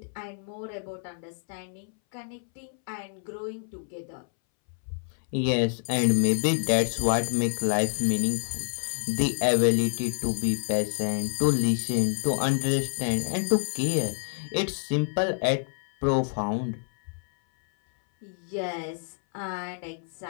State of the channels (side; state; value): right; silent; 60 dB below the other